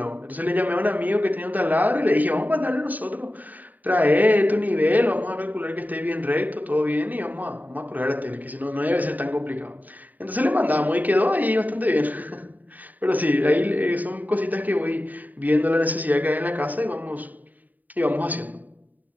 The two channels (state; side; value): late; left; 0.083 ms